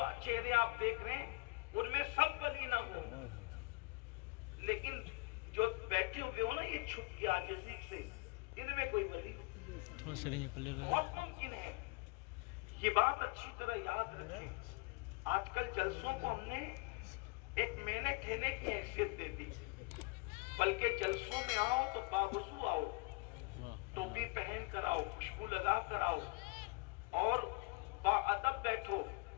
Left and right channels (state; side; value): quieter; right; 27.6 dB